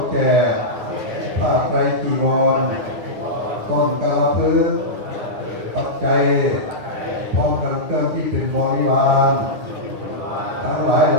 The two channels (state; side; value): late; left; 9.7 ms